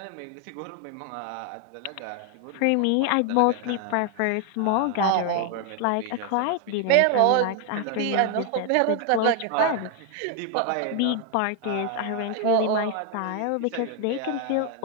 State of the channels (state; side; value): different; both; correlation 0.00